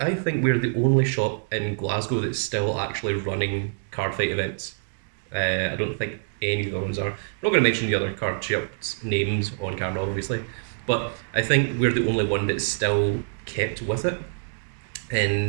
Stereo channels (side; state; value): left; silent; digital silence